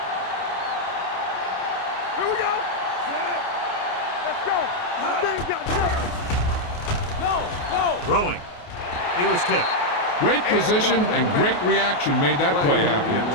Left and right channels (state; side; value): late; right; 28 ms